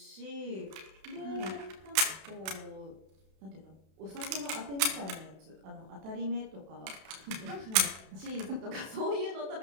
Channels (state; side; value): late; left; 32 ms